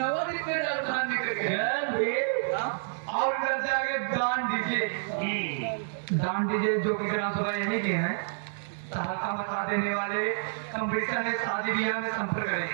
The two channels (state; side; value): silent; left; 59 dB below the other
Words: और इधर से आगे दान दीजिए जो कि ग्राम सभा यही के हैं। सहायता बता देने वाले कंपटीशन है, शादी ब्याह में संपर्क करें।